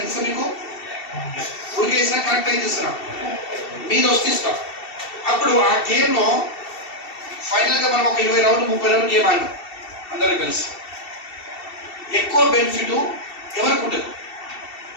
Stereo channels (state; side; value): late; right; 2.7 ms